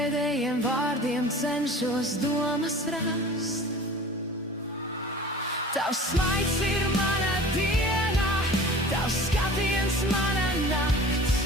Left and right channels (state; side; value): normal; both; correlation 0.41